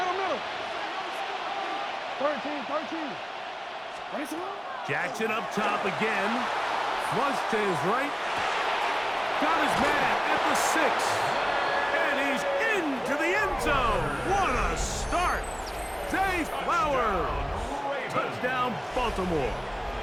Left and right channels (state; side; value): identical; both; correlation 1.00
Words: 13. Jackson up top again. Flush to his right. Got his man at the 6. And he's into the end zone. What a start. Zay Flowers. Touchdown, Baltimore.